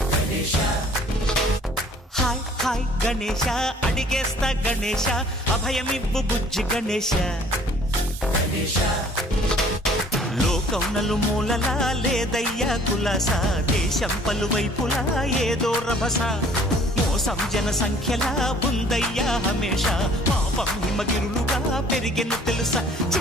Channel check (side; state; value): both; normal; correlation 0.55